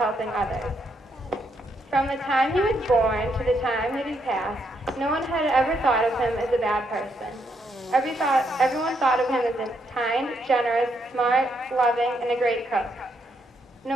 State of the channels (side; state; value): both; normal; correlation 0.76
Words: others. From the time he was born to the time that he passed, no one had ever thought of him as a bad person. Everyone thought of him as a kind, generous, smart, loving, and a great cook. No